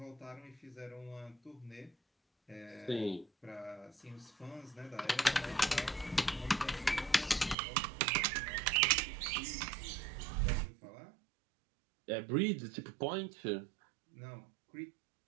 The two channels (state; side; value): drops out; left; at 7.6 s